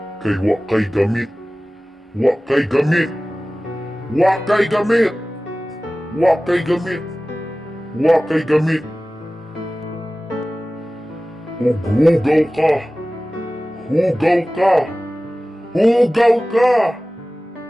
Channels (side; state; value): both; normal; correlation 0.97